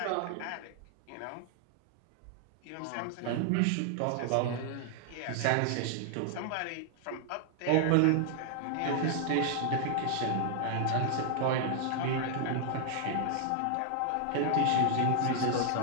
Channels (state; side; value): different; both; correlation 0.00